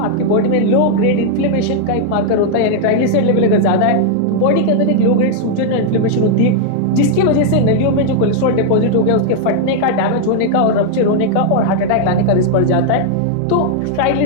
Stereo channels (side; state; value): both; different; correlation 0.00